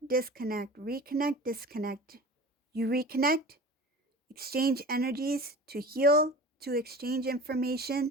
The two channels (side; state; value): both; normal; correlation 0.37